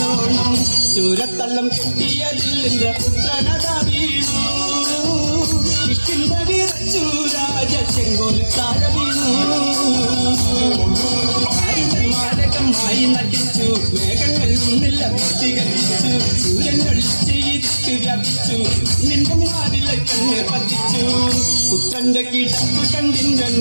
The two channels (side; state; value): both; inverted; correlation -1.00